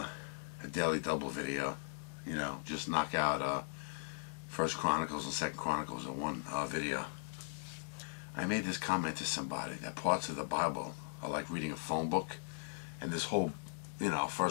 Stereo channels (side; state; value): right; silent; digital silence